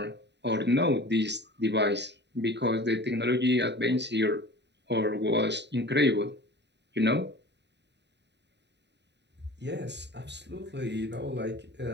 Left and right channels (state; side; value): late; left; 0.50 ms